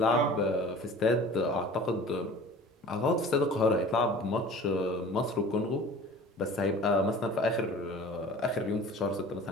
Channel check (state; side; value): normal; both; correlation 0.43